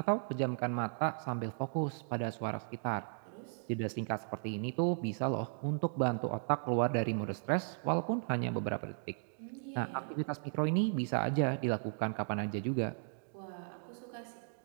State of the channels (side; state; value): left; silent; digital silence